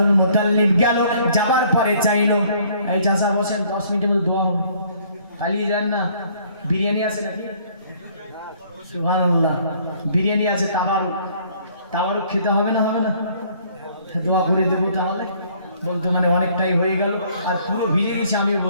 মুতাল্লিব গেল, যাবার পরে চাইলো, এই চাচা বসেন, 10 মিনিটের মধ্যে দোয়া হবে, পালিয়ে যান না। বিরিয়ানি আছে নাকি? সুবহানাল্লাহ, বিরিয়ানি আছে, তাবারুক খেতে হবে না? হবে না? দোয়া করে দেবো তাহলে। বলতো মানে অনেকটাই হয়ে গেল, আর পুরো ভিজে গেছে। আমি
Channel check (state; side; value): inverted; both; correlation -0.60